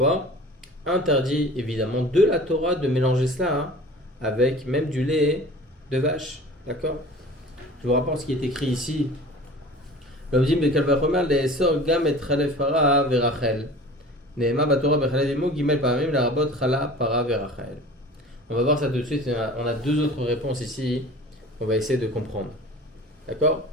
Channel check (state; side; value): normal; both; correlation 0.41